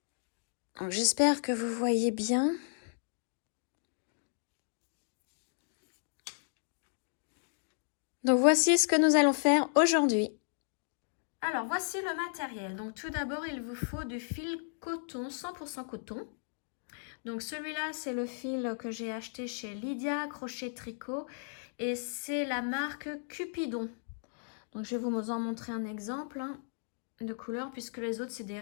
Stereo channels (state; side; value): silent; right; digital silence